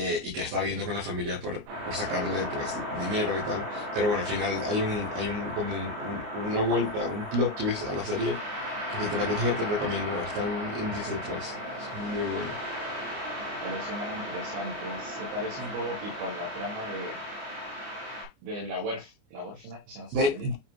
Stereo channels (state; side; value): late; left; 29 ms